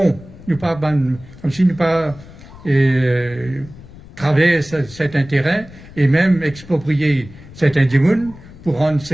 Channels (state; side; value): noise; left; rumble, 19 dB below the sound